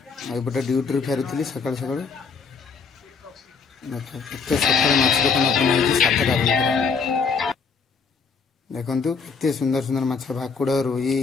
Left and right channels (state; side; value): quieter; right; 5.3 dB